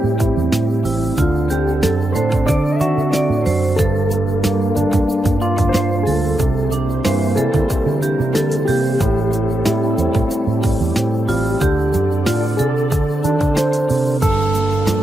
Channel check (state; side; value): normal; both; correlation 0.86